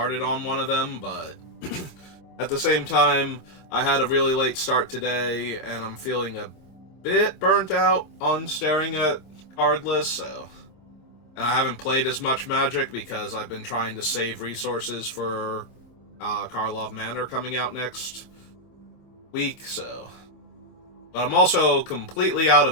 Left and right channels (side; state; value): right; late; 26 ms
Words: on one of them, but at the same time, I had a really late start today, and I'm feeling a bit burnt out on staring at card lists, so. And I haven't played as much Magic because I've been trying to save resources for Karlov Manor coming out next week, so. But I'm also completely out